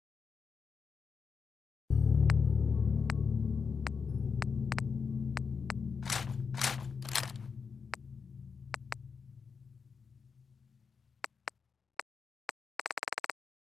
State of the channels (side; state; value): right; quieter; 5.6 dB